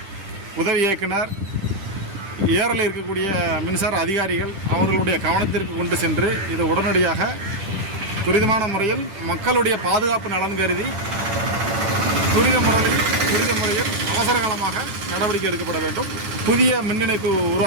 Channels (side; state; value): left; late; 10 ms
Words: உதவி இயக்குனர், ஏரலில் இருக்கக்கூடிய மின்சார அதிகாரிகள் அவர்களுடைய கவனத்திற்கு கொண்டு சென்று இதை உடனடியாக துரிதமான முறையில் மக்களுடைய பாதுகாப்பு நலன் கருதி துரித முறையில் அவசர காலமாக நடவடிக்கை எடுக்கப்பட வேண்டும். புதிய மின் இணைப்பு